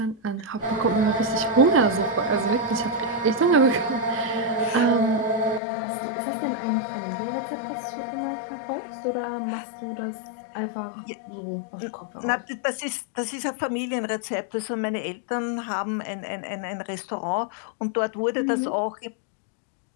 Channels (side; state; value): right; drops out; at 5.6 s